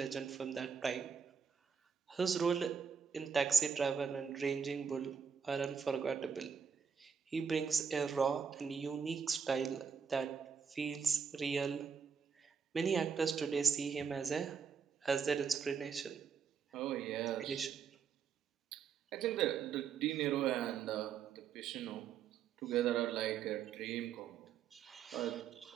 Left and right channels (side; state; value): left; quieter; 6.4 dB